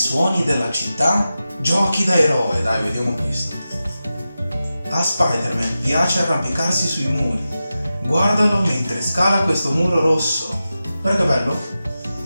della città, giochi da eroe. Dai, vediamo questo. A Spider-Man piace arrampicarsi sui muri. Guardalo mentre scala questo muro rosso. Guarda che bello.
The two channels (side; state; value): both; inverted; correlation -0.92